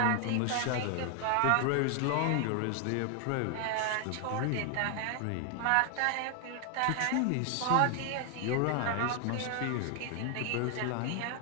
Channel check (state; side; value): different; both; correlation 0.00